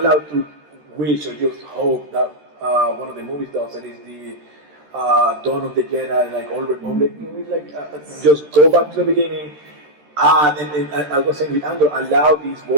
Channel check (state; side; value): late; left; 13 ms